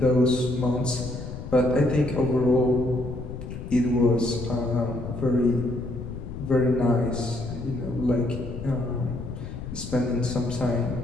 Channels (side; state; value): left; noise; rumble, 9 dB below the sound